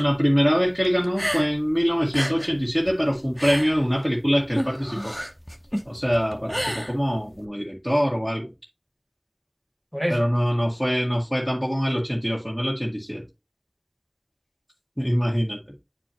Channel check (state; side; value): identical; both; correlation 1.00